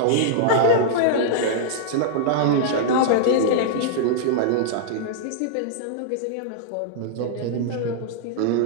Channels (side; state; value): both; different; correlation -0.02